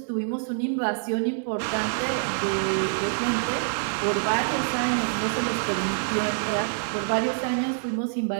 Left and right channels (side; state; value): left; silent; 61 dB below the other